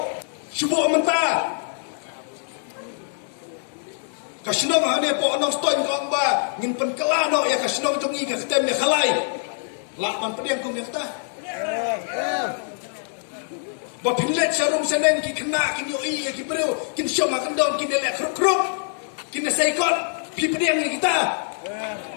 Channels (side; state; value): right; silent; digital silence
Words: Subuh menta. Kasino hane po anong stoin ko ba ngin penkelano ya kasino jongi ka ketem ya khalai. La man pediang kum ya kata. Bapinlet sarum seneng ki kena kin yo i ki breu kin syom akan don kin elek kruk kin saikot pipediang ni kita